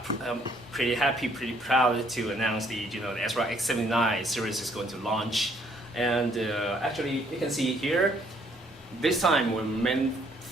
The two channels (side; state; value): both; normal; correlation 0.65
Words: pretty proud to announce the ASRock X79 series is going to launch. And actually, you can see here, this time our main